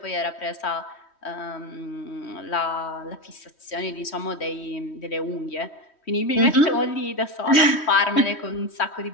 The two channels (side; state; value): right; late; 3.1 ms